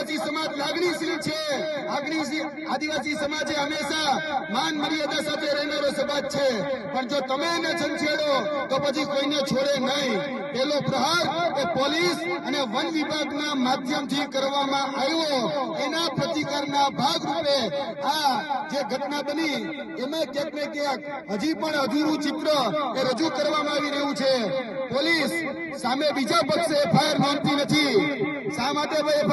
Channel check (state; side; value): identical; both; correlation 1.00